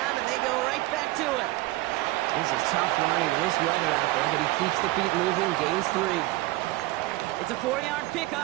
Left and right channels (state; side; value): quieter; left; 19.3 dB